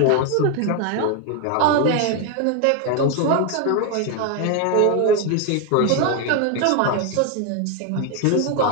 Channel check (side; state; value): both; different; correlation 0.02